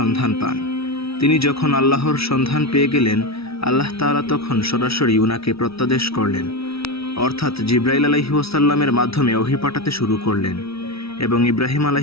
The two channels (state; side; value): late; right; 0.76 ms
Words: পান। তিনি যখন আল্লাহর সন্ধান পেয়ে গেলেন, আল্লাহ তাআলা তখন সরাসরি উনাকে প্রত্যাদেশ করলেন, অর্থাৎ জিবরাইল আলাইহিসসালামের মাধ্যমে ওহী পাঠাতে শুরু করলেন, এবং ইব্রাহিম